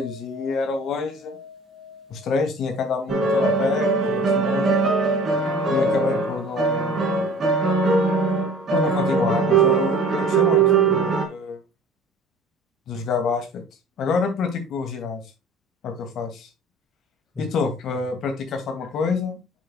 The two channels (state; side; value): normal; both; correlation 0.46